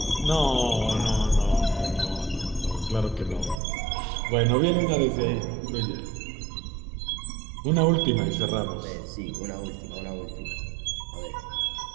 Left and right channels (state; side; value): drops out; left; at 3.6 s